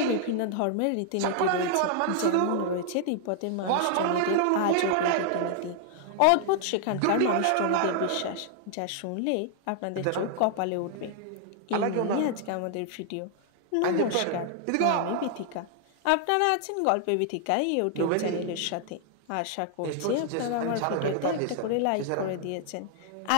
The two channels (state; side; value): different; both; correlation 0.00